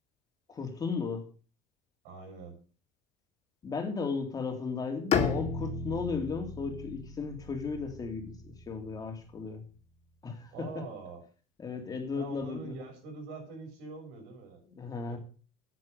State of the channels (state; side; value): quieter; right; 4.4 dB